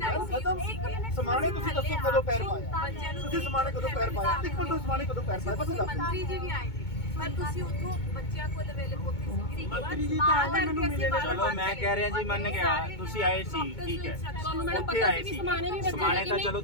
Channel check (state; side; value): late; right; 2.2 ms